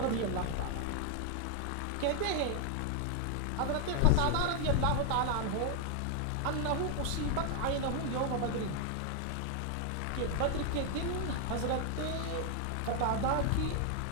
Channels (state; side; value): different; both; correlation 0.00